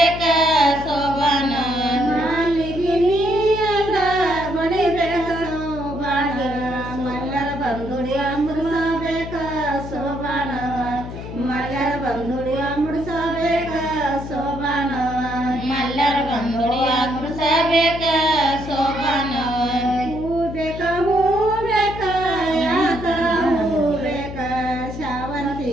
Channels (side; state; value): left; noise; hum, 10 dB below the sound